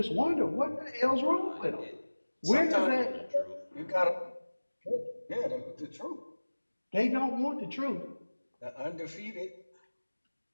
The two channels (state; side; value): inverted; both; correlation -1.00